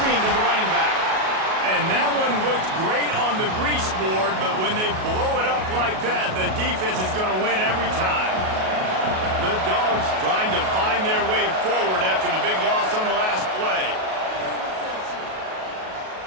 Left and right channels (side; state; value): left; late; 37 ms